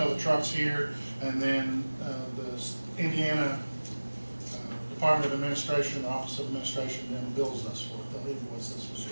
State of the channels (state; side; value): inverted; both; correlation -1.00